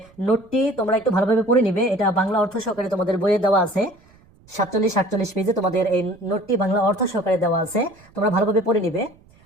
নোটটি তোমরা একটু ভালোভাবে পড়ে নিবে। এটা বাংলা অর্থ সহকারে তোমাদের বইয়ে দেওয়া আছে, 47-48 পেজে তোমাদের এই নোটটি বাংলা অর্থ সহকারে দেওয়া আছে, তোমরা ভালোভাবে পড়ে নিবে।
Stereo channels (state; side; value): noise; right; rumble, 29 dB below the sound